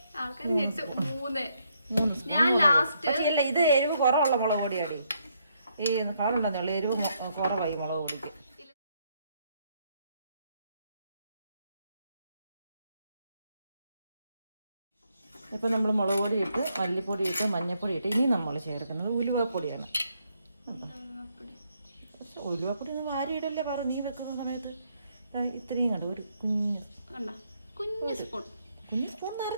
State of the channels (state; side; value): inverted; both; correlation -0.74